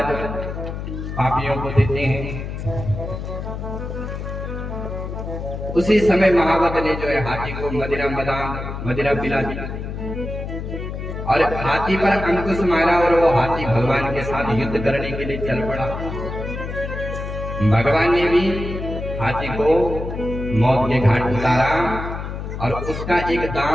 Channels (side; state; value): left; noise; hum, 6 dB below the sound